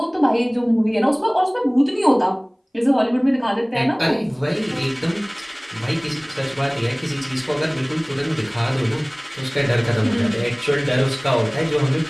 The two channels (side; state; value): both; identical; correlation 1.00